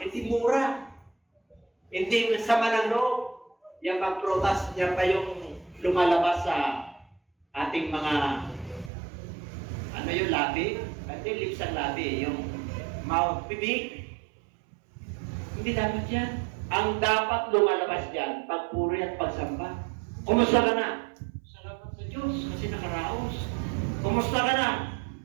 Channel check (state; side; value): drops out; left; at 8.9 s